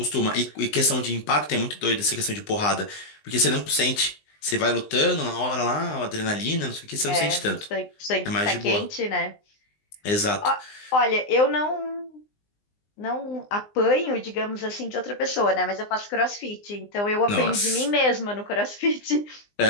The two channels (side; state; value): right; late; 19 ms